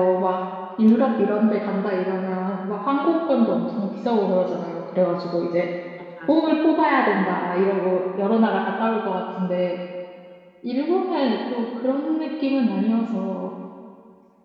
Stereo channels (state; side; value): identical; both; correlation 1.00